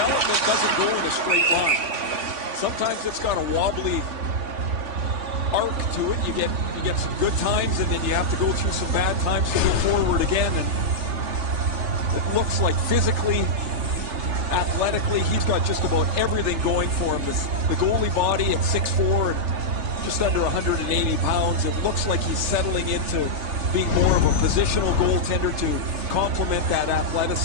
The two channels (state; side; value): late; left; 3.3 ms